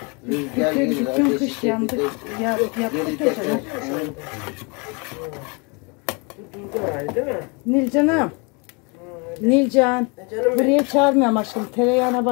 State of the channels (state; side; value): quieter; right; 31.3 dB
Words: Rüzgar gelir, Bütün ateşi kış yandık. çekecek. Yaptık Geri ya canım. teker. Durdu herhalde değil mi? Nilcan'ım. Nilcan. Canım benim. Buraya çağırmıyorum aşkım. Tereyağına